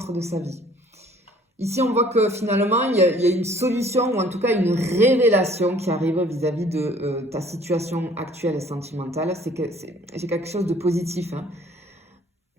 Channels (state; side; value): normal; both; correlation 0.55